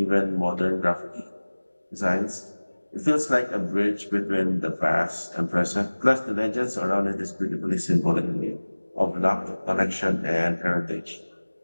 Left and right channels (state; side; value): inverted; both; correlation -1.00